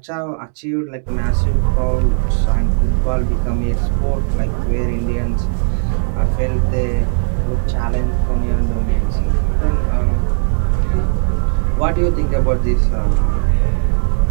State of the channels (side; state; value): left; silent; 68 dB below the other